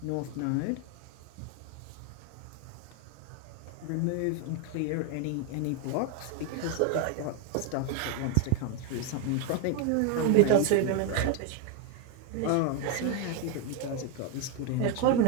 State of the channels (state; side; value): different; both; correlation 0.01